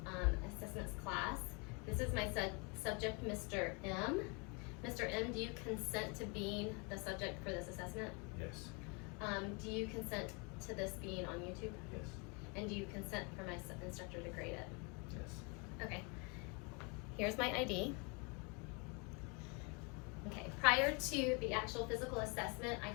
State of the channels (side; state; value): right; quieter; 31.5 dB